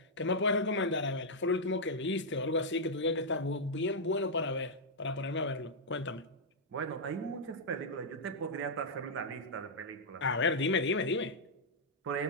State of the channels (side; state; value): both; normal; correlation -0.06